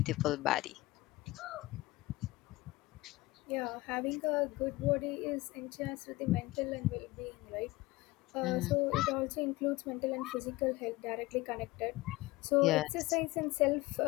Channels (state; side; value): quieter; right; 20.1 dB